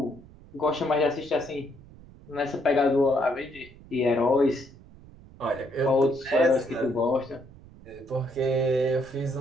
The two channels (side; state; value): right; noise; rumble, 21 dB below the sound